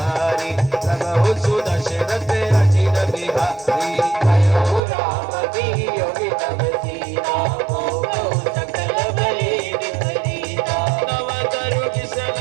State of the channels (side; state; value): left; drops out; at 4.8 s